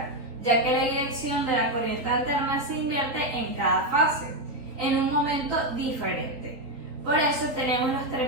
ya que la dirección de la corriente alterna se invierte en cada fase, en un momento diferente. Por eso tenemos los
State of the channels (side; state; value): left; late; 3.8 ms